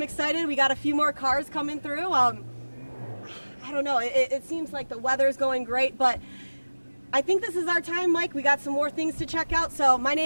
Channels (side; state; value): both; inverted; correlation -1.00